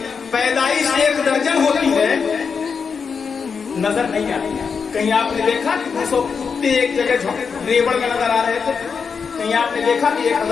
پیدائش 1 درجن ہوتی ہے، نظر نہیں آتی ہے۔ کہیں آپ نے دیکھا کہ 200 کتے ایک جگہ ریوڑ میں نظر آ رہے تھے؟ کہیں آپ نے دیکھا کہ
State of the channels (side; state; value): right; quieter; 5.8 dB